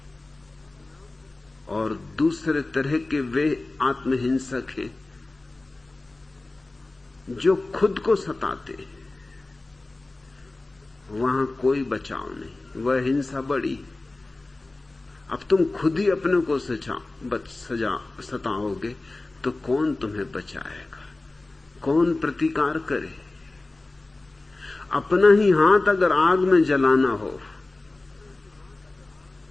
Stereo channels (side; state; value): right; quieter; 3.1 dB